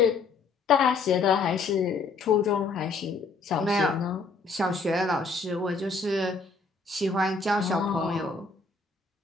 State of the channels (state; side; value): quieter; right; 4.2 dB